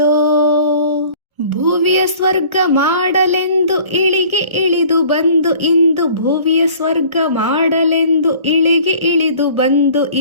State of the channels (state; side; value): late; left; 1.4 ms